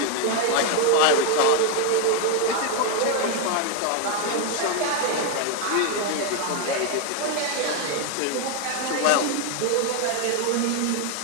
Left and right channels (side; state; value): both; different; correlation 0.01